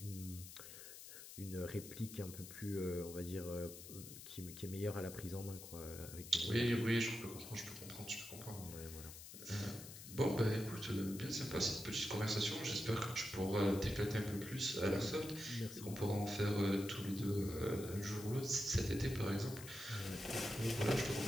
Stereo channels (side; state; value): left; noise; hiss, 13 dB below the sound